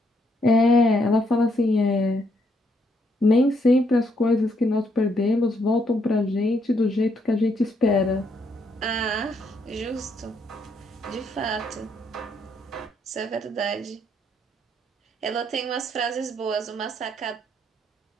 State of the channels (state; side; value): normal; both; correlation 0.74